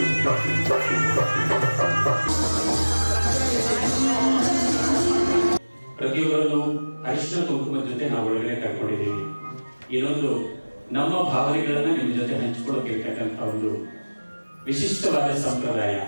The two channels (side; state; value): both; inverted; correlation -1.00